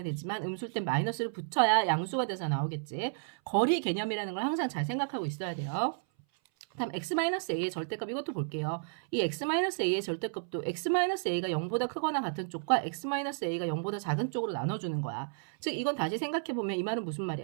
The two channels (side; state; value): left; silent; 56 dB below the other